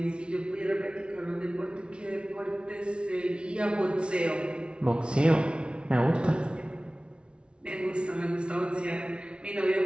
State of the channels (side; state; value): left; late; 0.057 ms